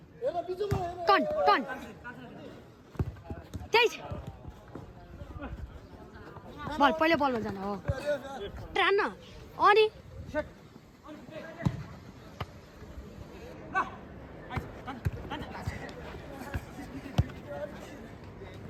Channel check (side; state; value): both; identical; correlation 1.00